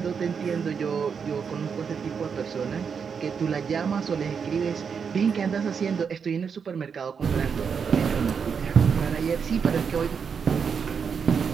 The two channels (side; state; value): left; quieter; 6.4 dB